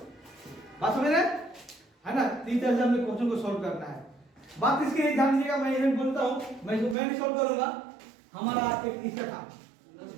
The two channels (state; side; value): drops out; left; at 7.0 s